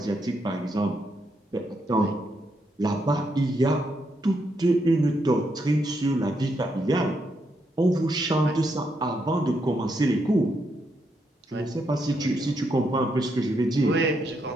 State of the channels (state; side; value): normal; both; correlation 0.79